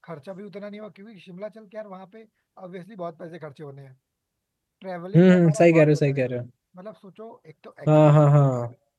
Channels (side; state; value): both; identical; correlation 1.00